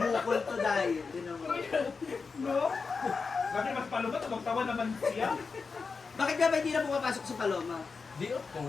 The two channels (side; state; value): right; quieter; 4.8 dB